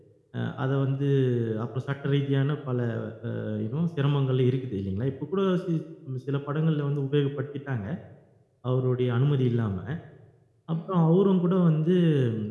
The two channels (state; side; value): identical; both; correlation 1.00